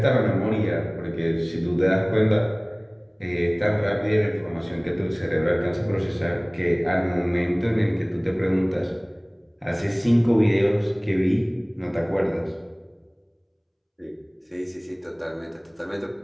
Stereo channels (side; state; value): both; identical; correlation 1.00